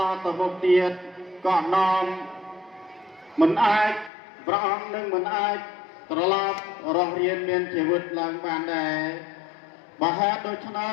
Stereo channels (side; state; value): right; drops out; at 4.1 s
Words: តទៅមុខទៀតក៏នាំមិនអាចព្រះអង្គនឹងមិនអាចត្រឡប់រស់រានមានជីវិតឡើងបានដែរបើហេតុដូច្នេ